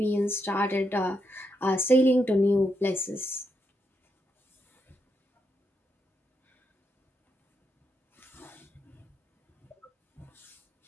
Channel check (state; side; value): normal; both; correlation 0.81